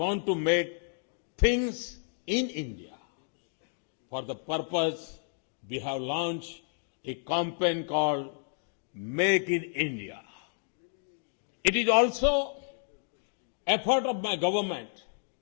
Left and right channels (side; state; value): right; silent; digital silence